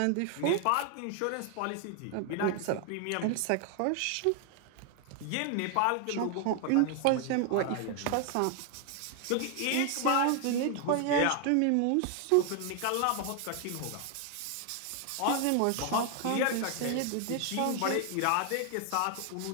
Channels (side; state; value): both; different; correlation 0.00